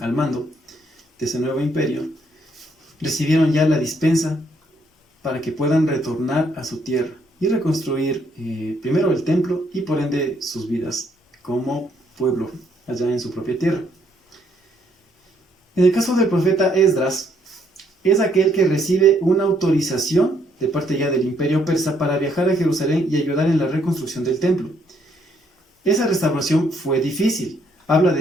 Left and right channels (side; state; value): both; normal; correlation 0.70